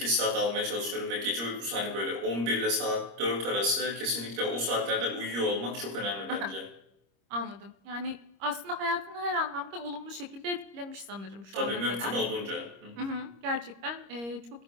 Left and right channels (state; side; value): late; left; 25 ms